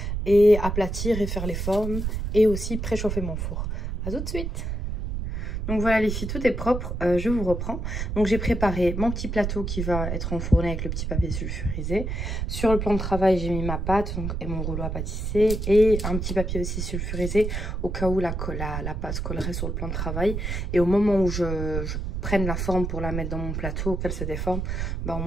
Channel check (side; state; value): right; noise; rumble, 3 dB below the sound